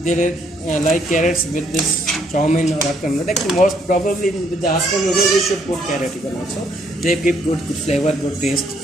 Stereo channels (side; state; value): both; normal; correlation 0.69